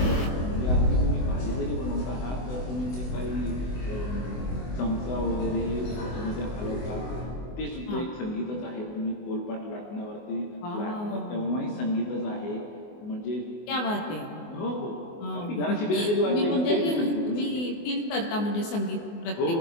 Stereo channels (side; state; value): right; late; 24 ms